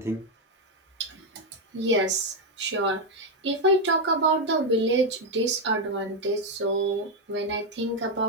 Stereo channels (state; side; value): normal; both; correlation 0.04